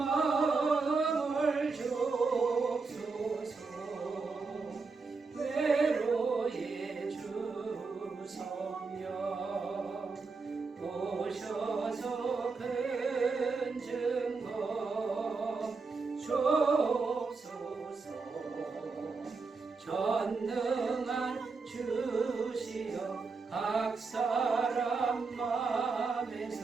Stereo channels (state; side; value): quieter; left; 4.4 dB